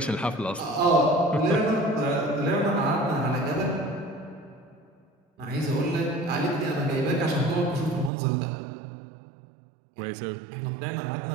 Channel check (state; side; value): drops out; left; at 8.1 s